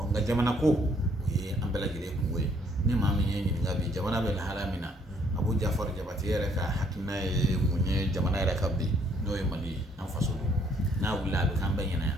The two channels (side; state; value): both; normal; correlation 0.65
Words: jamana ko o ye an bɛɛ lajɛlen kungo ye ni maa min ye ɲininka bi jamana bɛ lahala min na Abu Jafar Jabate yɛrɛ ka hakilina ye mun ye jamana yɛrɛ ka bi n'o ye Mali ye an faso don n'a wulila a bɛ k'an bɛɛ ɲɛna